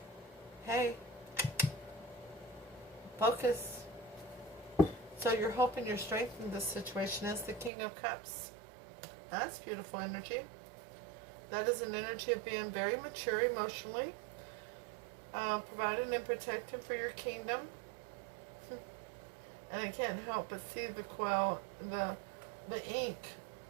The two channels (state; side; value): drops out; left; at 7.7 s